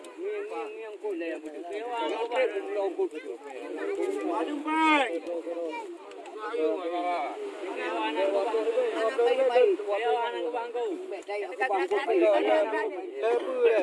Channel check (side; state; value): both; identical; correlation 1.00